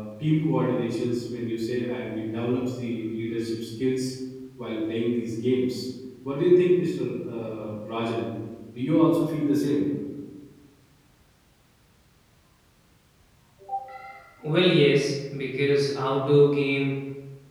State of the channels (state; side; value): identical; both; correlation 1.00